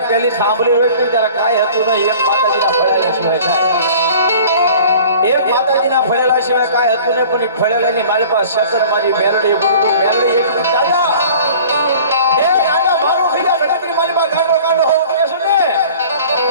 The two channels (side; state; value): both; inverted; correlation -0.46